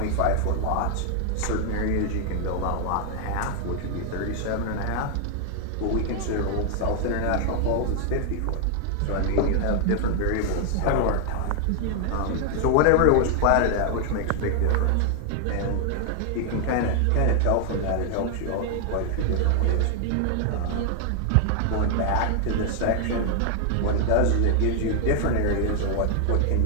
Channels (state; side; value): different; both; correlation 0.00